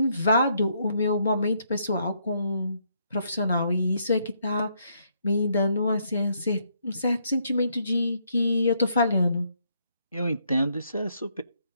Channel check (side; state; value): both; inverted; correlation -0.73